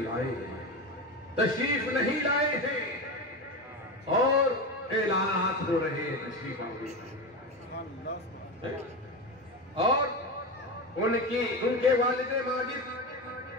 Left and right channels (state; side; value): normal; both; correlation 0.20